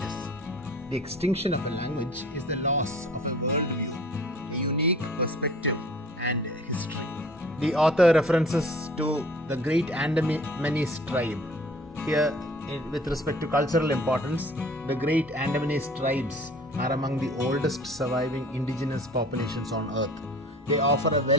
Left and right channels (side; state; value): both; normal; correlation 0.48